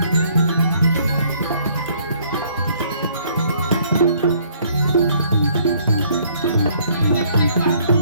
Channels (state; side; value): inverted; both; correlation -0.62